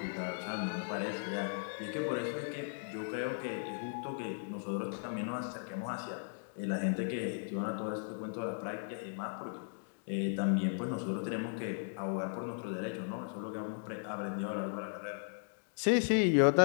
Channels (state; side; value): silent; right; digital silence